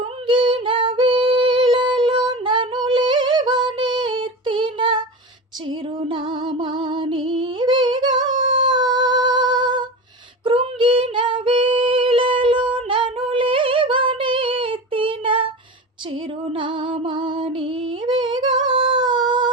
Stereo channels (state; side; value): normal; both; correlation 0.27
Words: వేళలో నన్ను లేవనెత్తిన చిరునామా నీవేగా. కృంగిన వేళలో నన్ను లేవనెత్తిన చిరునామా నీవేగా.